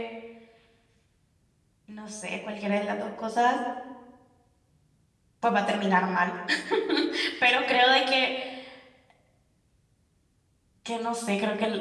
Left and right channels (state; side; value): identical; both; correlation 1.00